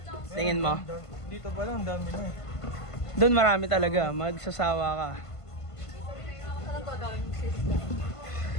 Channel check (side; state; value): right; late; 1.5 ms